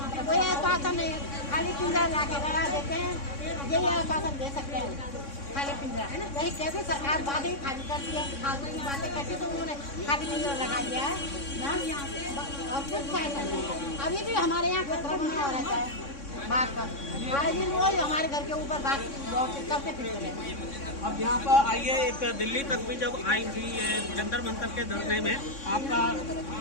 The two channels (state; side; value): late; right; 3.6 ms